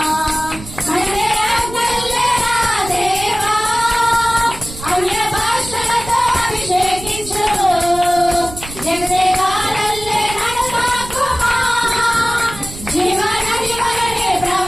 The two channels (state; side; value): noise; right; rumble, 13 dB below the sound